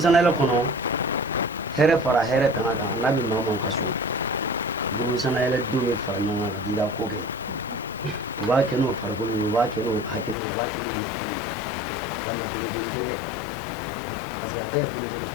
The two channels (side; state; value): right; drops out; at 10.4 s